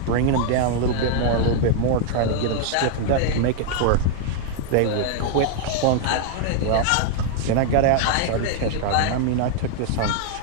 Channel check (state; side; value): different; both; correlation -0.01